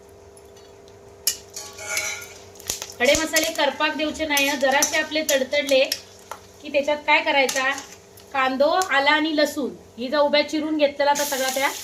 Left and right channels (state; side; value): identical; both; correlation 1.00